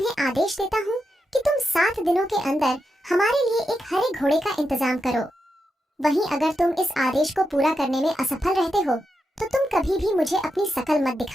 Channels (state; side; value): normal; both; correlation 0.86